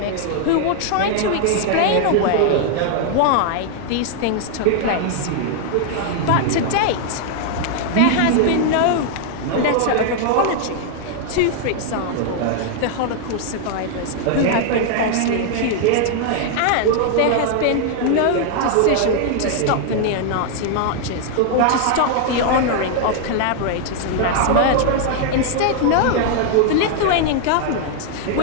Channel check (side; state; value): both; different; correlation 0.00